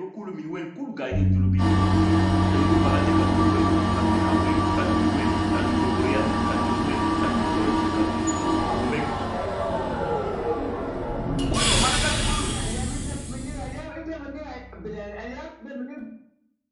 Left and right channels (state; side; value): identical; both; correlation 1.00